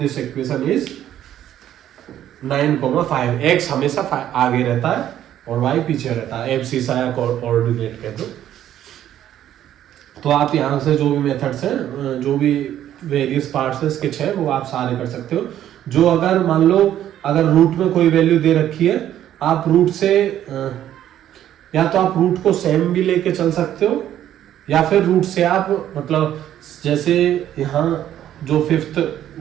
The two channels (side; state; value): left; quieter; 11.5 dB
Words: equation is 9,5। x हमेशा आगे रहता है और y पीछे रहता है, एब्सिसा या कोऑर्डिनेट कह दो। तो आप यहाँ से जो भी मेथड्स हैं, जो भी वेरियस पार्ट्स है इसके 6, वो आप सारे कर सकते हो। जो अगर मान लो अगर रूट में कोई वैल्यू दे रखी है, आप रूट से या तो आप रूट को सेम भी लेके चल सकते हो, या फिर रूट से आप मतलब जैसे यहाँ जो 5th